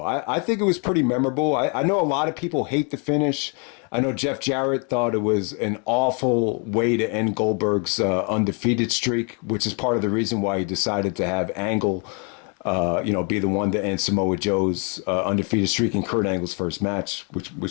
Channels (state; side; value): quieter; right; 36.4 dB